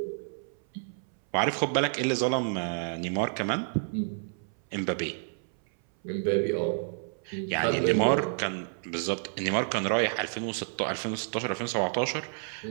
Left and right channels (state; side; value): silent; left; 58 dB below the other